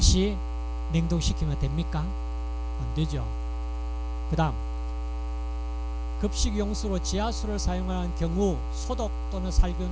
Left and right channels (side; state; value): both; identical; correlation 1.00